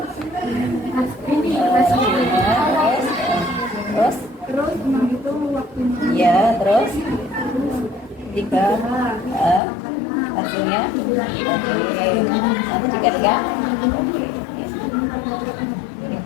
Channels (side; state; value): right; drops out; at 9.6 s